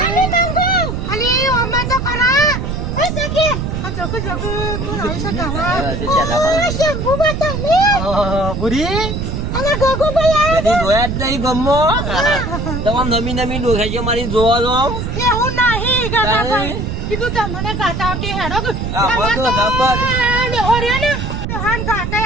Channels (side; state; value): right; noise; rumble, 3 dB below the sound